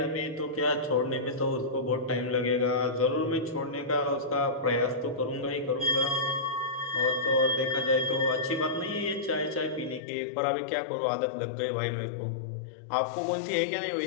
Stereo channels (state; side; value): drops out; right; at 10.0 s